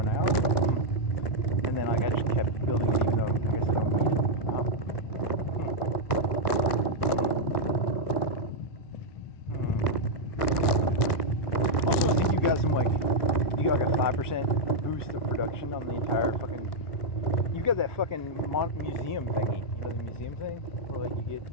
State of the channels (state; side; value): late; right; 1.2 ms